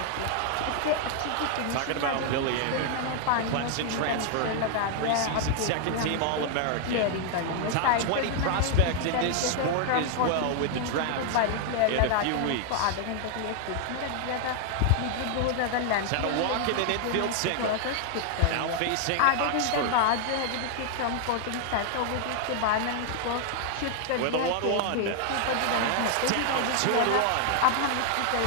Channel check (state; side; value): different; both; correlation 0.00